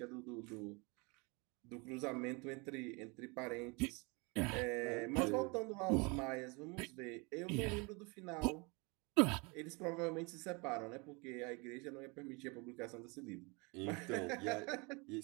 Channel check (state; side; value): quieter; left; 29.0 dB